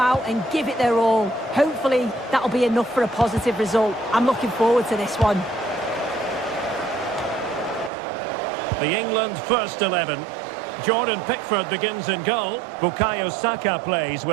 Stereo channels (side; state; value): left; drops out; at 7.9 s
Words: and give it their all. Hopefully, that'll be enough for a positive result. I'm looking forward to this one. The England first 11. Jordan Pickford begins in goal. Bukayo Saka plays